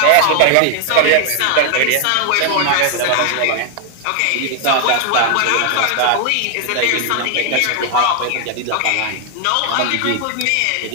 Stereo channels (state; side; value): different; both; correlation 0.00